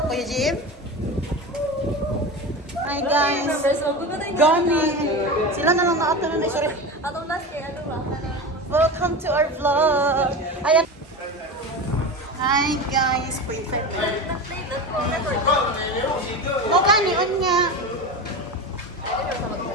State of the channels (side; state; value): both; normal; correlation 0.26